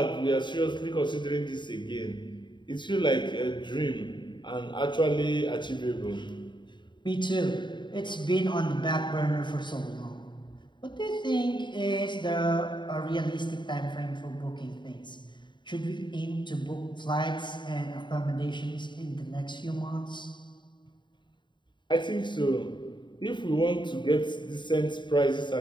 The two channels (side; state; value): right; late; 0.23 ms